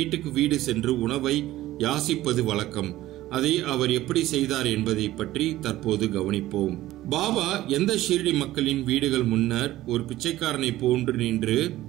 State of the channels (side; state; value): left; quieter; 15.6 dB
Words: வீடு சென்று உணவை யாசிப்பது வழக்கம். அதை அவர் எப்படி செய்தார் என்பதை பற்றி தற்போது கவனிப்போம். பாபா எந்த ஷீரடி மக்களின் வீடுகள் முன்னர் ஒரு பிச்சைக்காரனை போன்று நின்று,